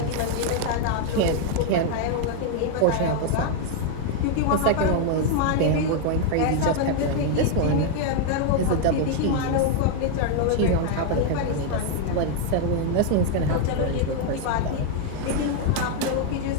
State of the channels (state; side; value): different; both; correlation 0.00